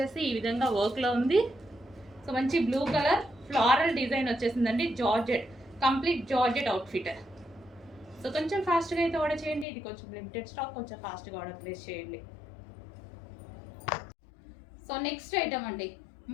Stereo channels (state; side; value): drops out; right; at 9.7 s